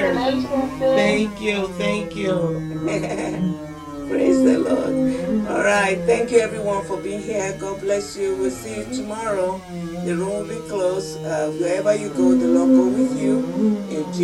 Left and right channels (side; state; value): both; identical; correlation 1.00